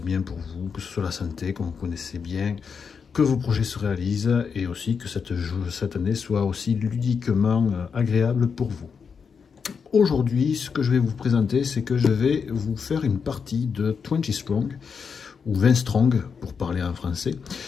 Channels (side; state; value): right; quieter; 6.0 dB